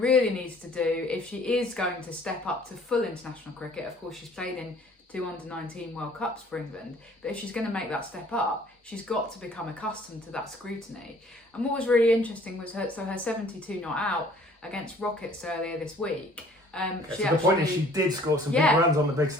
really needs to do, if she is going to step up to full international cricket, of course she's played in 2 under-19 World Cups for England, but if she's going to make that step up, she's got to become accustomed to that scrutiny. And what was really interesting was her 72 not out against Rockets earlier this week. The point is she did score some big runs on the big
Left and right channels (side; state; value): both; normal; correlation 0.55